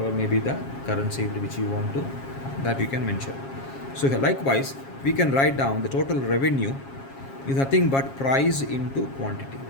may be the currency which you want to, that you can mention. So likewise, we can write down the total revenue is nothing but price into quantity.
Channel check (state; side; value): late; right; 7.4 ms